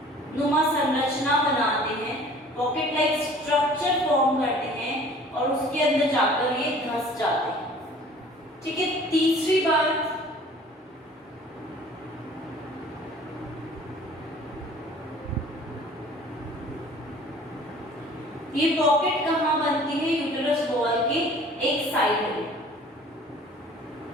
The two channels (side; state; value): both; normal; correlation 0.49